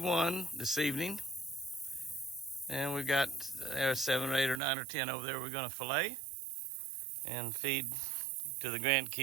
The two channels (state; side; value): drops out; left; at 4.6 s